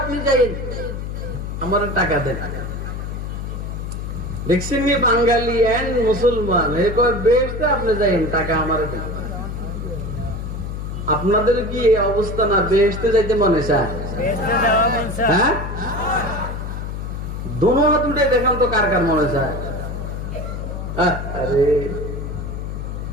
আপনি যাইন, আমার টাকা দেন। দেখছেন নি বাঙালি এন্ড মুসলমান বেহেশতে আপনি যাইন, টাকা আমার দেন। আপনাদের কি এই অবস্থা না? বেহেশতে যাইতে মনে চায়? হ্যাঁ, দোনো হাত উঠে দেখান তো কার কার মনে চায়। আরে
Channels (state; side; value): noise; left; hum, 6 dB below the sound